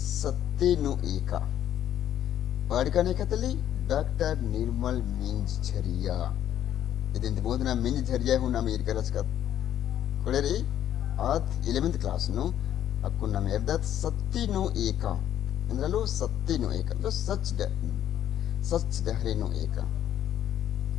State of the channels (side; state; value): right; quieter; 10.9 dB